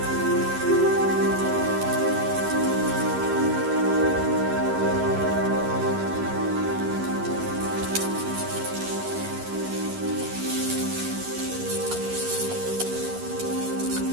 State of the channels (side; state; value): left; late; 11 ms